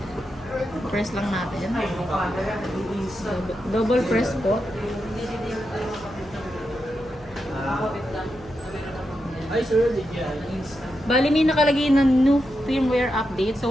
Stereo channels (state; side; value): noise; left; hum, 22 dB below the sound